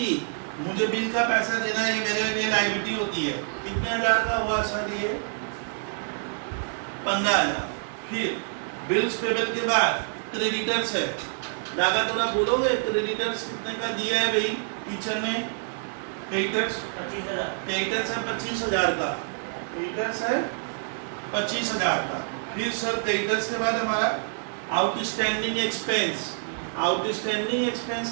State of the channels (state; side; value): silent; left; 60 dB below the other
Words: मुझे बिल का पैसा देना है, ये मेरे लिए लायबिलिटी होती है। कितने हजार का हुआ सर ये? 15,000। फिर बिल्स पेबल के बाद क्रेडिटर्स है। दादा थोड़ा बोलोगे क्रेडिटर्स कितने का दिया है भाई टीचर ने? क्रेडिटर्स 25,000। क्रेडिटर्स है 25,000 का, क्रेडिटर्स है 25,000 का। फिर सर क्रेडिटर्स के बाद हमारा आउटस्टैंडिंग एक्सपेंस। आउटस्टैंडिंग एक्सपेंस